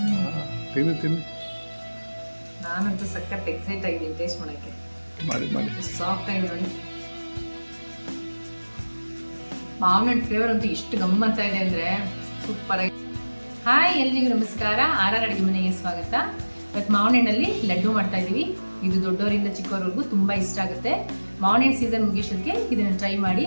ತಿನ್ನಿ ತಿನ್ನಿ. ನಾನಂತೂ ಸಖತ್ ಎಕ್ಸೈಟ್ ಆಗಿದ್ದೀನಿ ಟೇಸ್ಟ್ ಮಾಡೋಕ್ಕೆ. ಮಾಡಿ ಮಾಡಿ. ಸಾಫ್ಟ್ ಆಗಿದೆ ನೋಡಿ. ಮಾವಿನ ಫ್ಲೇವರ್ ಅಂತೂ ಎಷ್ಟು ಗಮ್ಮತ್ತಾ ಇದೆ ಅಂದರೆ ಸೂಪರ್ ಆಗಿ. ಹಾಯ್, ಎಲ್ರಿಗೂ ನಮಸ್ಕಾರ. ಆರ್ ಅಡುಗೆ ಮನೆಗೆ ಸ್ವಾಗತ. ಇವತ್ತು ಮಾವಿನ ಹಣ್ಣಲ್ಲಿ ಲಡ್ಡು ಮಾಡ್ತಾ ಇದ್ದೀವಿ. ಇದು ದೊಡ್ಡವರಿಂದ ಚಿಕ್ಕವರೆಗೂ ತುಂಬ ಇಷ್ಟ ಆಗುತ್ತೆ. ಮಾವಿನ ಹಣ್ಣು ಸೀಸನ್ ಮುಗಿಸೋದಕ್ಕೆ ಇದನ್ನು ಟ್ರೈ ಮಾಡಿ,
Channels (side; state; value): both; inverted; correlation -1.00